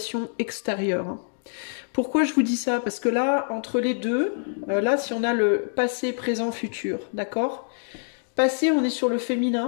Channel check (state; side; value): silent; right; digital silence